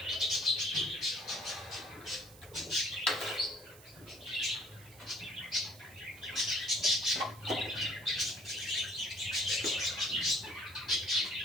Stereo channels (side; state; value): right; noise; hiss, 20 dB below the sound